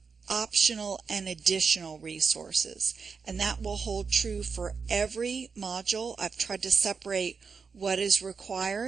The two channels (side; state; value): left; quieter; 5.4 dB